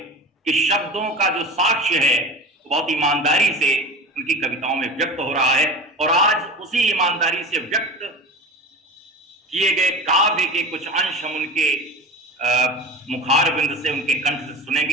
कि शब्दों का जो साक्ष्य है बहुत ईमानदारी से उनकी कविताओं में व्यक्त हो रहा है। और आज उसी ईमानदारी से व्यक्त किए गए काव्य के कुछ अंश हम उनके मुखार बिंद से, उनके कंठ से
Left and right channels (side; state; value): both; normal; correlation 0.31